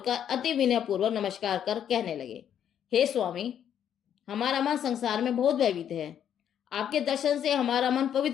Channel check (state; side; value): quieter; right; 9.4 dB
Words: अति विनय पूर्वक नमस्कार कर कहने लगे, हे स्वामी, हमारा मन संसार में बहुत भयभीत है। आपके दर्शन से हमारा मन